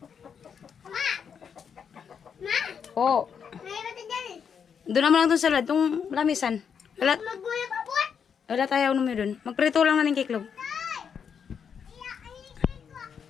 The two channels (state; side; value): quieter; right; 7.1 dB